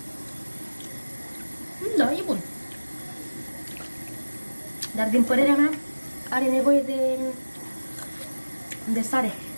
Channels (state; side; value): inverted; both; correlation -1.00